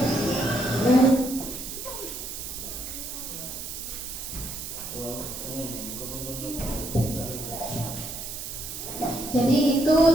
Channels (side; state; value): right; noise; hiss, 8 dB below the sound